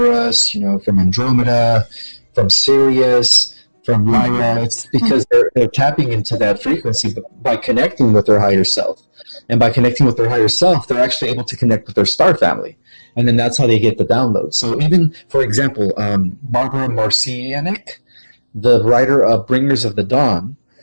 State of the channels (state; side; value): inverted; both; correlation -1.00